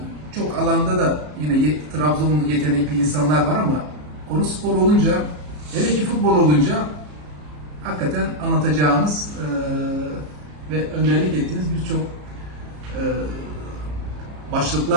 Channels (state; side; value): late; left; 34 ms